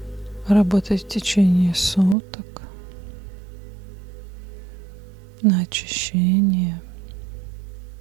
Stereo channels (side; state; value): left; drops out; at 2.1 s